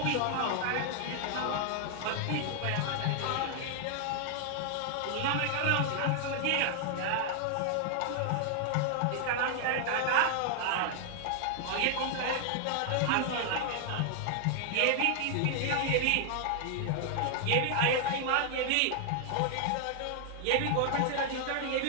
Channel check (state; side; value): different; both; correlation 0.00